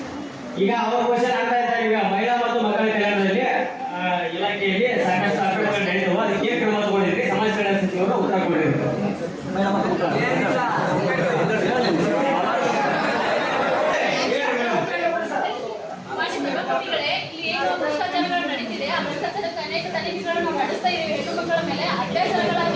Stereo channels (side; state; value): both; identical; correlation 1.00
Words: ಈಗ ಅವ್ರ ಕ್ವಶನ್ ಆಗ್ತಾ ಇದ್ದಾರೆ. ಈಗ ಮಹಿಳಾ ಮತ್ತು ಮಕ್ಕಳ ಕಲ್ಯಾಣದಲ್ಲಿ ಇಲಾಖೆಯಲ್ಲಿ ಸಾಕಷ್ಟು ಅಕ್ರಮಗಳು ನಡೆದವು. ಅದಕ್ಕೆ ಕ್ರಮ ತಗೊಂಡಿದ್ರಿ. ಸಮಾಜ ಕಲ್ಯಾಣ ಸಚಿವರು ಉತ್ತರ ಕೊಟ್ಟಿದ್ರು. ಇಲ್ಲಿ ಏನು ಭ್ರಷ್ಟಾಚಾರಗಳು ನಡೀತಿದೆ ಆ ಭ್ರಷ್ಟಾಚಾರಕ್ಕೆ ಅನೇಕ ತನಿಖೆಗಳನ್ನು ನಾವು ನಡೆಸ್ತಾ ಇದ್ದೀವಿ. ಹೆಣ್ಣು ಮಕ್ಕಳ ಮೇಲೆ